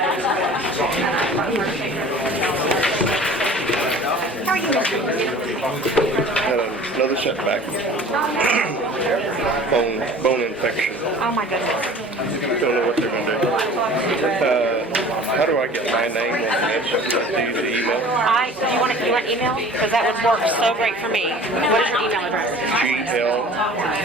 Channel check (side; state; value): both; normal; correlation 0.45